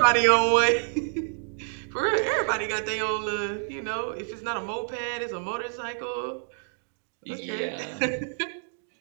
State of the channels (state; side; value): silent; left; digital silence